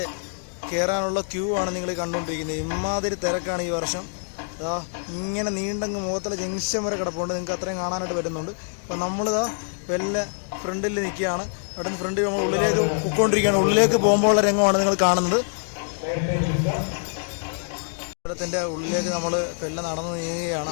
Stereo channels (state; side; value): silent; right; 62 dB below the other